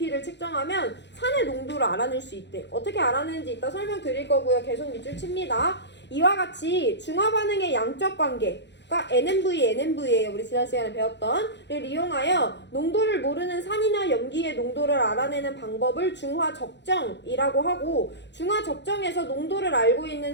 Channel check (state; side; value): late; right; 0.51 ms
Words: 측정하면 산의 농도를 알아낼 수 있대. 어떻게 알아내는지 이따 설명드릴 거고요. 계속 밑줄 칩니다. 이와 같이 중화 반응의 양적 관계가 NMV예요. 우리 지난 시간에 배웠던.를 이용하여 농도를 모르는 산이나 염기의 농도를 알아내는 방법을 중화적정이라고 하고, 중화적정에서 농도를 알고